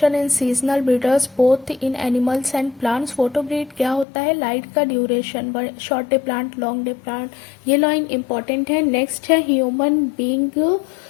in seasonal breeders both in animals and plants। Photo breed क्या होता है, लाइट का duration, short day plant, long day plant, ये लाइन इंपॉर्टेंट है। नेक्स्ट है human being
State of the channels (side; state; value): right; drops out; at 4.0 s